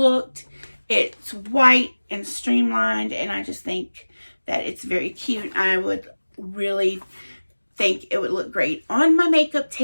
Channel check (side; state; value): both; inverted; correlation -1.00